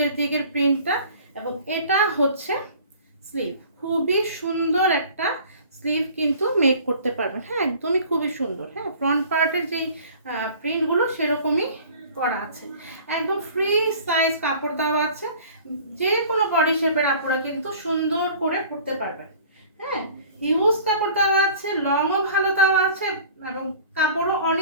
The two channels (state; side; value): inverted; both; correlation -0.47